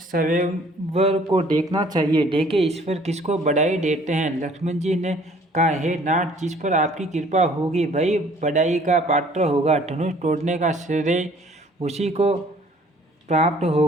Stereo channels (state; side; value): normal; both; correlation 0.56